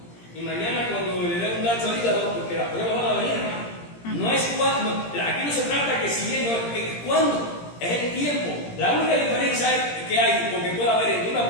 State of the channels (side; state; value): right; late; 17 ms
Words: y mañana cuando le dé un daño al hígado, porque las pruebas van a venir, no es cuando, aquí no se trata que si bien, no es cuándo. Es el tiempo. La única diferencia que hay, porque puede haber entre una